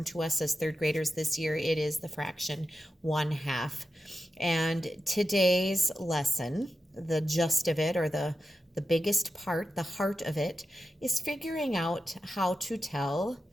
to us as third graders this year, it is the fraction 1/2. And today's lesson, the gist of it, or the biggest part, the heart of it, is figuring out how to tell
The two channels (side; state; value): both; normal; correlation 0.90